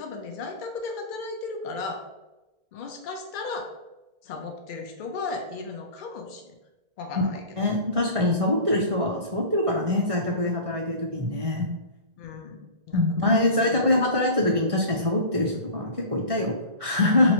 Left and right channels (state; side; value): late; left; 1.6 ms